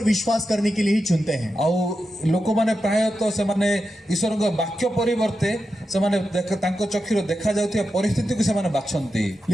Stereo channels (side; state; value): both; normal; correlation 0.89